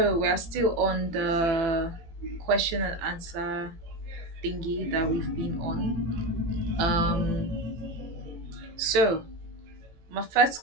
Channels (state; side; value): late; left; 18 ms